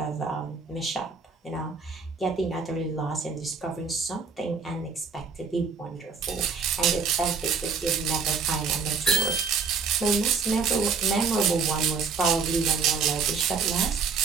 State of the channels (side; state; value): left; quieter; 5.2 dB